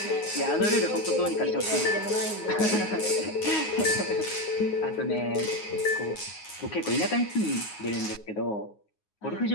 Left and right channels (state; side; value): late; right; 9.5 ms